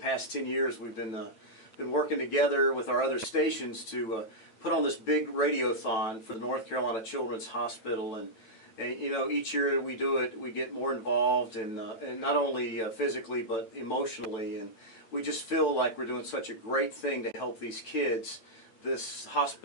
10 years we've been working together with our other stations to put on this big radiothon for the North Carolina Children's Hospital. And you know, each year we do it, we get more involved, and not only physically but emotionally, and we just feel like we're doing such a great thing to help these kids. This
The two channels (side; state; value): right; late; 9.0 ms